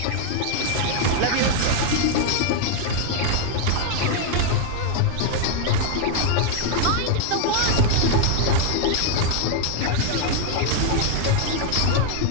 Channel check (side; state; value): both; different; correlation 0.00